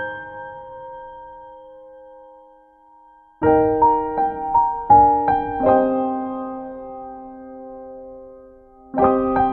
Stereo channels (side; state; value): both; identical; correlation 1.00